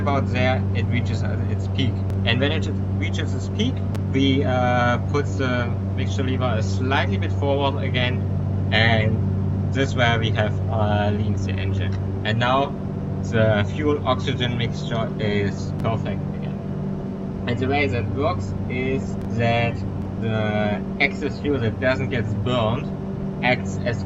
there, it reaches its peak. And when it reaches its peak, we put the mixture lever a slightly bit forward again. And this is where we have leaned the engine. And now the fuel oxygen mixture is perfect again. And the way that works is that the excess fuel that doesn't get burned acts as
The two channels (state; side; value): identical; both; correlation 1.00